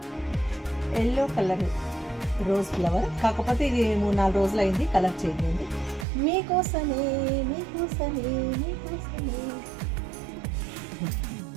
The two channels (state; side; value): drops out; left; at 6.1 s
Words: Yellow colour rose flower, కాకపోతే ఇది 3-4 రోజులు అయింది, కలర్ చేంజ్ అయింది. మీకోసమే మీకోసమే మీకోసమే.